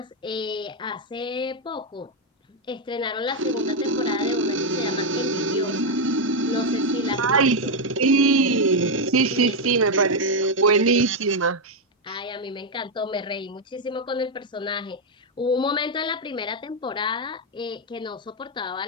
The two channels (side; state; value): both; normal; correlation 0.03